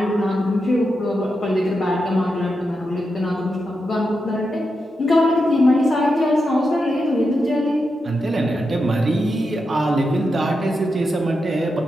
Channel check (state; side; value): normal; both; correlation 0.87